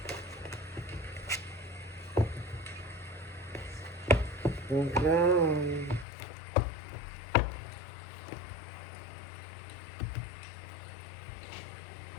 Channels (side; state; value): right; drops out; at 6.1 s